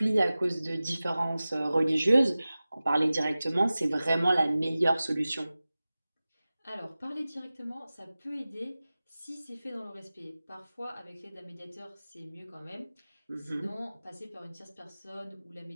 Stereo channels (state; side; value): inverted; both; correlation -0.97